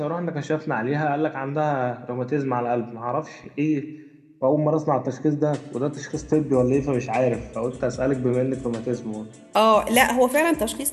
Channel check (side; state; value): both; identical; correlation 1.00